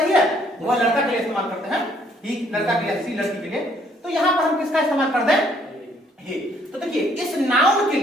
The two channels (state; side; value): normal; both; correlation 0.65